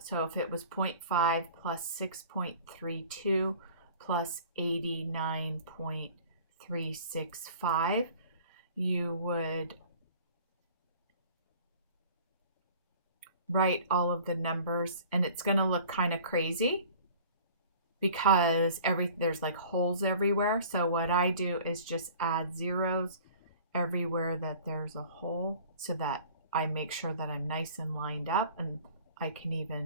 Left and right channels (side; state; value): both; inverted; correlation -0.47